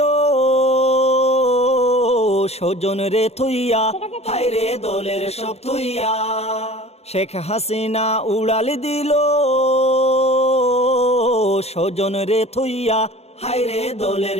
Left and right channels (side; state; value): right; late; 0.30 ms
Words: স্বজন রে থুইয়া, হায় রে দলের সব থুইয়া। শেখ হাসিনা উড়াল দিল স্বজন রে থুইয়া, হায় রে